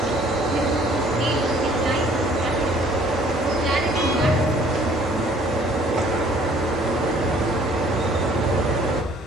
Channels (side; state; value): both; normal; correlation 0.57